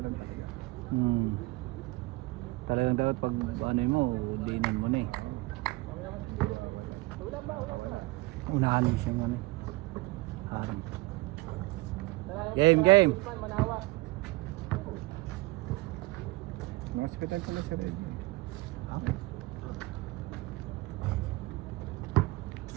talaga. Talagang dapat pag ano mo, dinan mo na eh. Unahan mo siya ano eh. Harang. Game! Mga hospital pala si Reggie.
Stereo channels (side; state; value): left; quieter; 22.1 dB